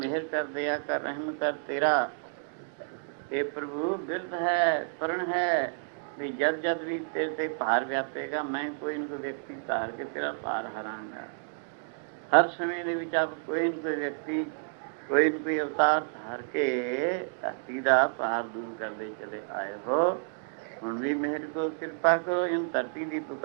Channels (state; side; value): silent; left; digital silence